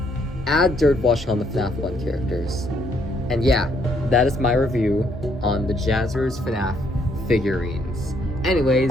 add dirt washing on the FNAF 1 characters. And yeah, that is my review on the Jazwares FNAF figurines.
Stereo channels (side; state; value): both; normal; correlation 0.70